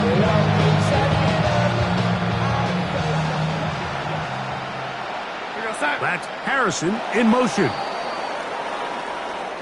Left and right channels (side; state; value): both; identical; correlation 1.00